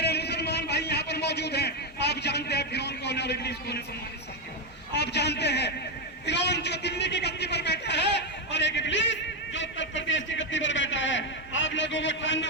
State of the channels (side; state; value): both; normal; correlation 0.06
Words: मुसलमान भाई यहाँ पर मौजूद हैं, आप जानते हैं फिरौन कौन है और इब्लीस कौन है। सम्मानित साथियों, आप जानते हैं फिरौन जो दिल्ली की गद्दी पर बैठा है और एक इब्लीस जो उत्तर प्रदेश की गद्दी पर बैठा है। आप लोगों को ठानना